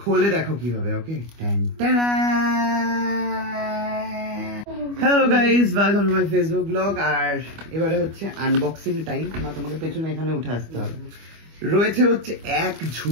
देखो কিভাবে। Okay, hello guys, welcome to my Facebook blog. আর এবারে হচ্ছে আনবক্সিং টাইম। না, তোমাকে পেছনে এখানে উঠে আসতে হবে। রয়েছে হচ্ছে এক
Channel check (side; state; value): left; late; 25 ms